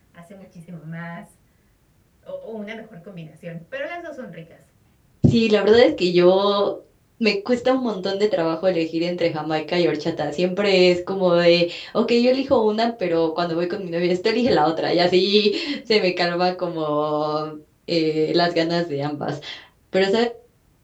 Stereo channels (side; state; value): both; identical; correlation 1.00